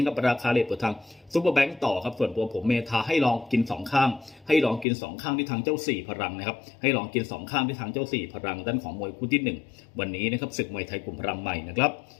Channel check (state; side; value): drops out; right; at 4.9 s